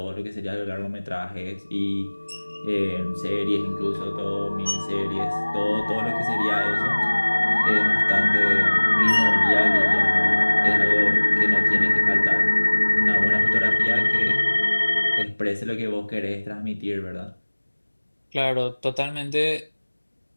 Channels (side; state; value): both; inverted; correlation -1.00